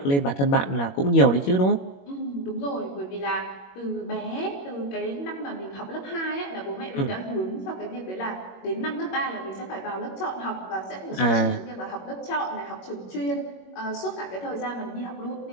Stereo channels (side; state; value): right; late; 21 ms